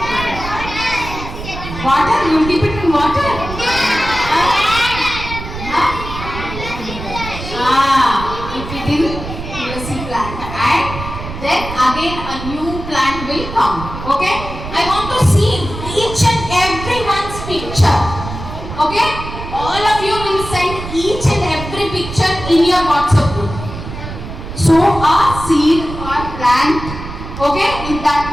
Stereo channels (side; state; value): right; noise; rumble, 9 dB below the sound